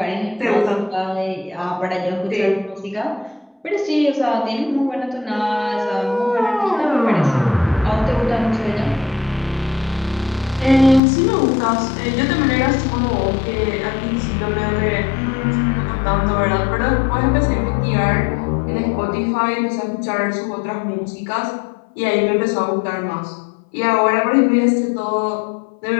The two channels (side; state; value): right; drops out; at 11.0 s